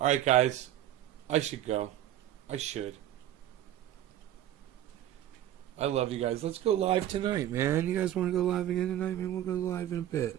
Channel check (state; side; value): quieter; left; 12.2 dB